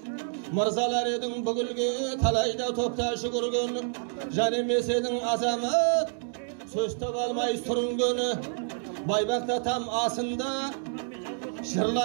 Мырзалар едің бүгілге талайда топта жүгірген, жан емес едің азамат, сөз таба алмай сүрінгені. Байбақта там асында,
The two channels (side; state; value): left; silent; digital silence